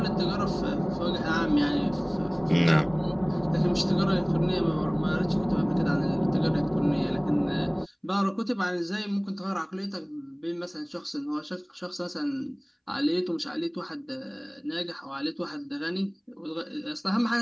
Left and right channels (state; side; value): identical; both; correlation 1.00